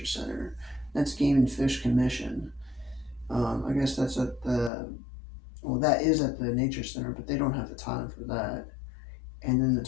Center. That's Game and Fish Commission. I guess that's at that is at the Nature Center, but they don't have the time for that. And then the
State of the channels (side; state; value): right; drops out; at 4.7 s